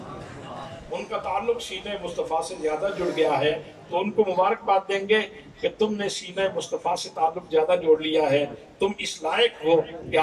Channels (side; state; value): both; identical; correlation 1.00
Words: ان کا تعلق سینہ مصطفیٰ سے زیادہ جڑ گیا ہے، تو ان کو مبارکباد دیں گے کہ تم نے سینہ مصطفیٰ سے تعلق زیادہ جوڑ لیا ہے، تم اس لائق ہو کہ